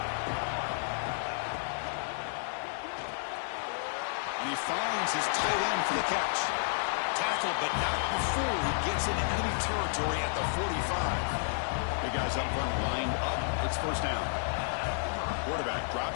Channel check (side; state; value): right; silent; digital silence